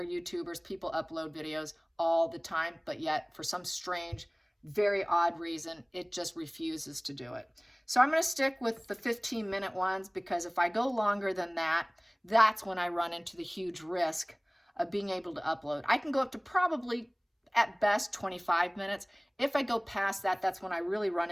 YouTubers, people upload videos all the time, but yet for some strange, very odd reason, it just refuses to do it. So I'm going to stick with the 15-minute ones because if I go longer than that, that's when I run into the huge risk of being able to upload. I can go up to probably at best 25 minutes. If I go past that, that's when I really run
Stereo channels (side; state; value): both; identical; correlation 1.00